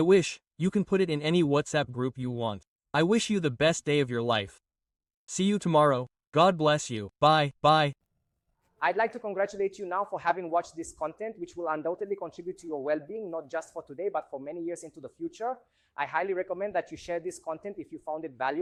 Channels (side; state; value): both; identical; correlation 1.00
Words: wish you can put it in any WhatsApp group you want. I wish you the best day of your life. See you tomorrow. God bless you. Bye. Bye. I'd like to congratulate you now for having watched this content, which will undoubtedly contribute to your well-being, not just for today, but for many years into the future. I highly recommend that you share this content if you found it